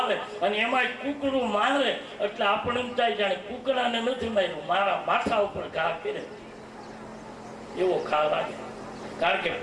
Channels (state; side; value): identical; both; correlation 1.00